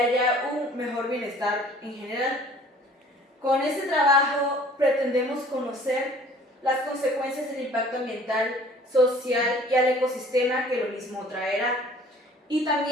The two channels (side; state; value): both; normal; correlation 0.52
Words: un mejor bienestar en general. Con este trabajo pretendemos conocer las consecuencias del impacto ambiental, social y al ecosistema que lo mismo traerá, y